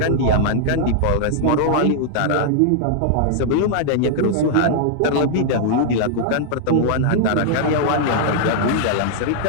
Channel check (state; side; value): different; both; correlation -0.01